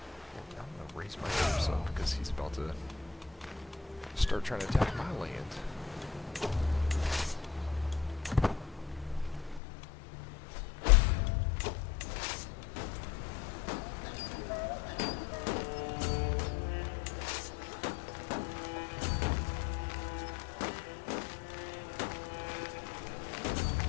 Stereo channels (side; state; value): right; drops out; at 9.6 s